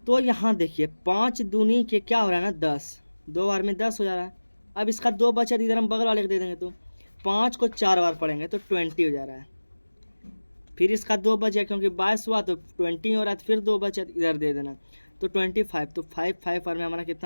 तो यहाँ देखिए 5 दूनी के क्या हो रहा है ना 10, 2 बार में 10 हो जा रहा है। अब इसका 2 बचा, इधर हम बगल वाले को दे देंगे, तो 5 को 4 बार पढ़ेंगे तो 20 हो जा रहा है। फिर इसका 2 बचा क्योंकि 22 हुआ तो 20 हो रहा है, तो फिर 2 बचा इधर दे देना तो 25, तो 5 बार में हमारा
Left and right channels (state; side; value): inverted; both; correlation -1.00